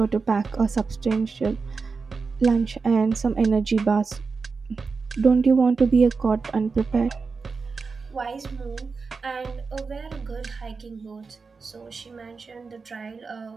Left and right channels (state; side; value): quieter; left; 4.7 dB